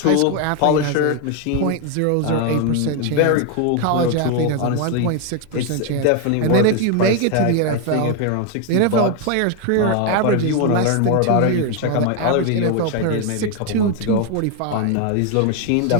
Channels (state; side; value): different; both; correlation 0.01